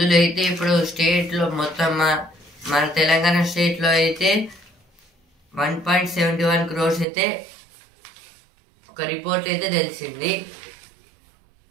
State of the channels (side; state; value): left; drops out; at 7.1 s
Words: అయితే ఇప్పుడు స్టేట్లో మొత్తం మన తెలంగాణ స్టేట్లో అయితే 1.71 crores అయితే ఒక రిపోర్ట్ అయితే తెలిసింది.